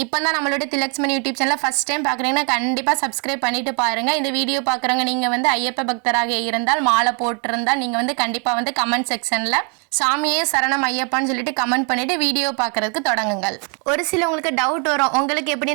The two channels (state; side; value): quieter; left; 37.7 dB